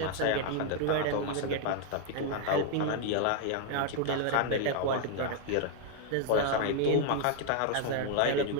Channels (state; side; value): different; both; correlation 0.00